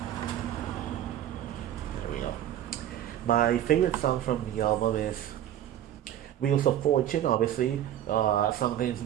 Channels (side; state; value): left; quieter; 11.5 dB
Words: There we go. My favorite song from the album is Wheels of Fortune. Obviously, something